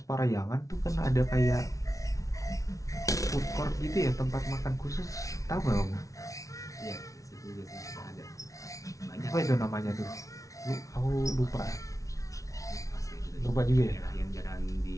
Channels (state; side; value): late; right; 0.16 ms